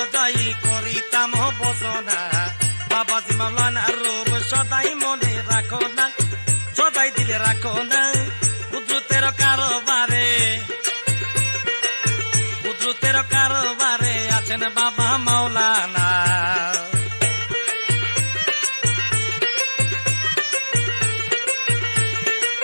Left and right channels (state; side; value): inverted; both; correlation -1.00